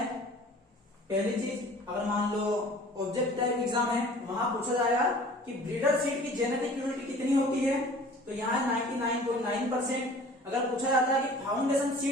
पहली चीज। अगर मान लो ऑब्जेक्ट टाइप एग्जाम है वहां पूछा जाएगा कि ब्रीडर सीड की जेनेटिक प्योरिटी कितनी होती है, तो यहाँ 99.9%। अगर पूछा जाता है कि फाउंडेशन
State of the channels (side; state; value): both; normal; correlation 0.47